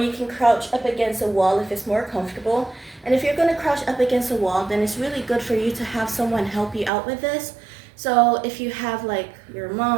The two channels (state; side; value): drops out; left; at 6.9 s